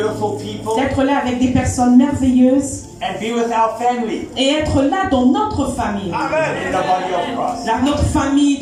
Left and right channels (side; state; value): both; identical; correlation 1.00